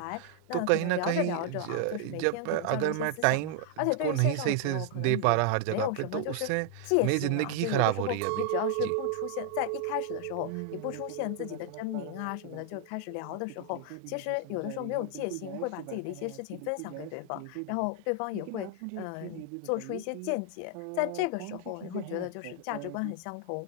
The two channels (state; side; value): different; both; correlation 0.00